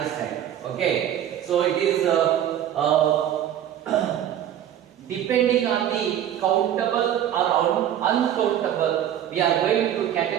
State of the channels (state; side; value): quieter; left; 10.8 dB